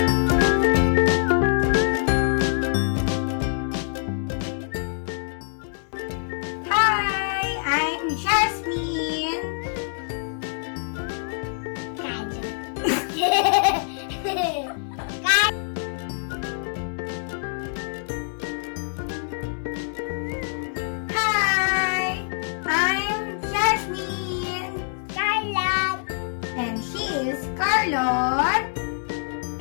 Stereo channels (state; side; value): silent; right; 62 dB below the other